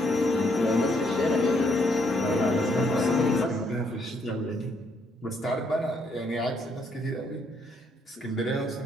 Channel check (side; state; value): both; normal; correlation 0.71